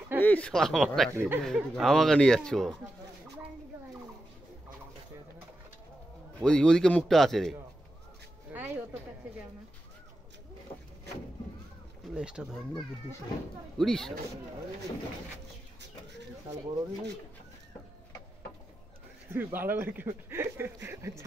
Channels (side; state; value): both; normal; correlation 0.89